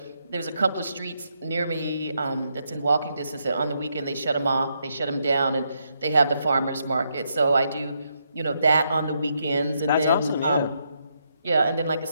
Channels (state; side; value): inverted; both; correlation -0.78